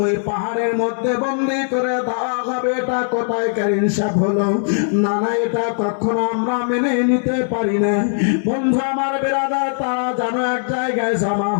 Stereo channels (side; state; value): right; silent; digital silence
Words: ওই পাহাড়ের মধ্যে বন্দি করে দেওয়া হবে। এটা কোথায় ইনসাফ হলো? না না, এটা কখনো আমরা মেনে নিতে পারি না। বন্ধু আমার বিরাদার, তারা যেন এক জায়গায় জমা